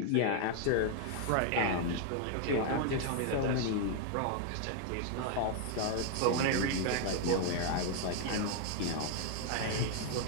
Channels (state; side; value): different; both; correlation 0.00